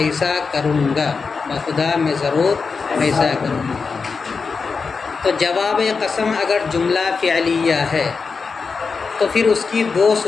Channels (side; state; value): right; quieter; 4.9 dB